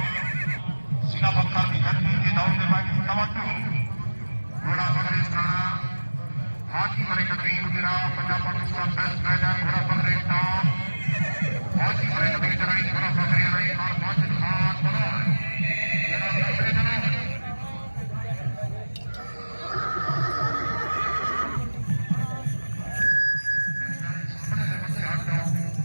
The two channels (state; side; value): inverted; both; correlation -1.00